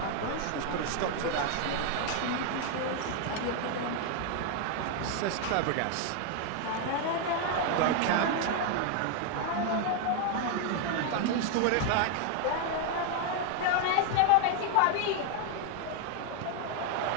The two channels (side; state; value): both; different; correlation 0.01